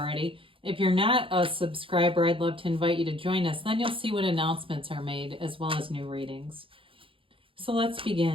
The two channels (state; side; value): late; left; 0.26 ms